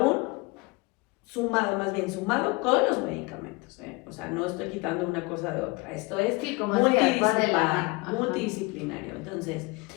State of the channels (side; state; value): right; quieter; 25.8 dB